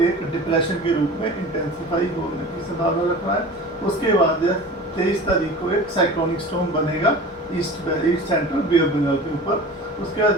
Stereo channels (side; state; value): both; normal; correlation 0.37